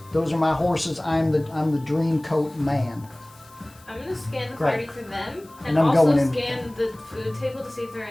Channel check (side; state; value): left; noise; hiss, 26 dB below the sound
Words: those are my horses. I'm the Dream Coat Man. I'm gonna scan the Great. party for them, And and I'm also going in. scan the food table to see if there are